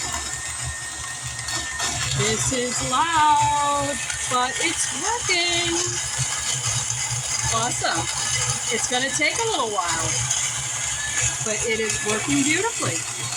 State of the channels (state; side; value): identical; both; correlation 1.00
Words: This is loud, but it's working. Awesome. It's going to take a little while, but it is working beautifully.